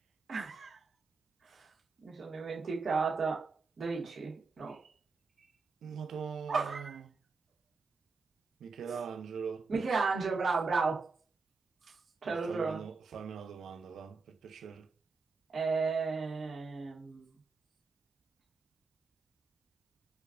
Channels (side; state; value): left; quieter; 4.4 dB